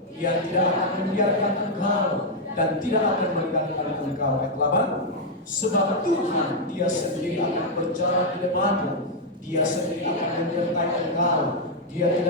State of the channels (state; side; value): normal; both; correlation -0.01